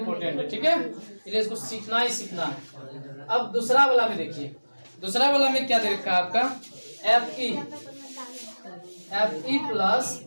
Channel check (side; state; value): both; inverted; correlation -1.00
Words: है। ठीक है, इसलिए इसको सीखना ही सीखना है। अब दूसरा वाला में देखिए, दूसरा वाला में क्या दे रखा है आपका? Fe plus